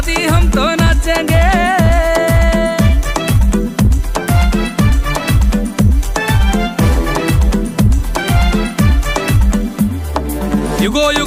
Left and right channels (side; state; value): both; identical; correlation 1.00